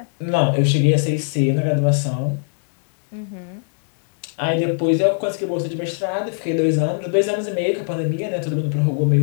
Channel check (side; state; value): right; silent; digital silence